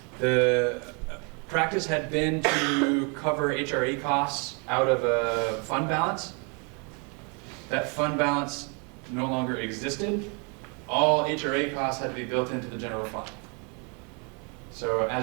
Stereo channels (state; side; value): quieter; left; 34.7 dB